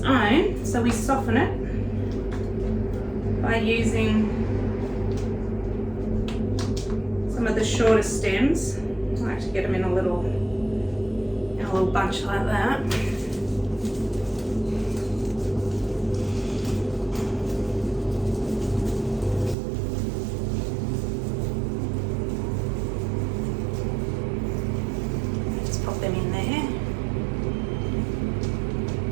own. So we soften it by using some of the shorter stems. I like to get them in a little bunch like that. Just pop them in there.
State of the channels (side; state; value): left; drops out; at 19.6 s